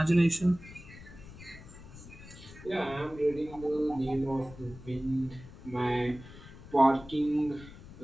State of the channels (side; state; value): left; noise; rumble, 17 dB below the sound